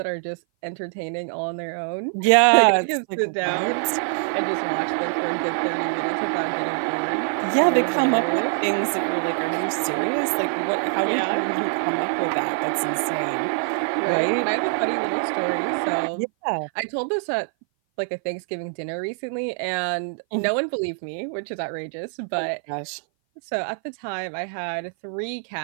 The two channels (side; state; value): left; silent; 58 dB below the other